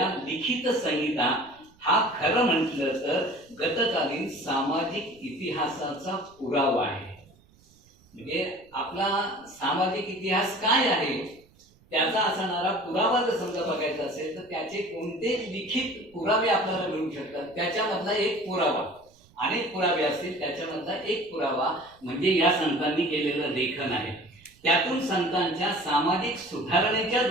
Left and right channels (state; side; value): noise; right; rumble, 30 dB below the sound